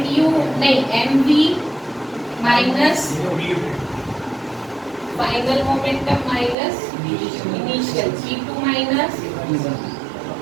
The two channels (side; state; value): left; drops out; at 6.6 s